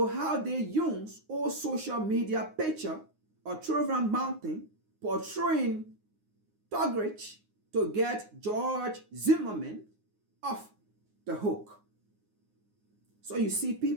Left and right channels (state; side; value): late; left; 9.6 ms